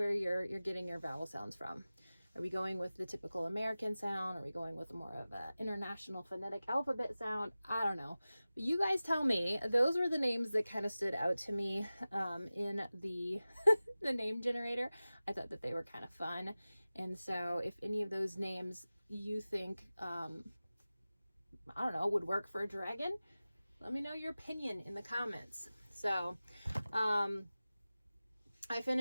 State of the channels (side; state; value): both; inverted; correlation -0.97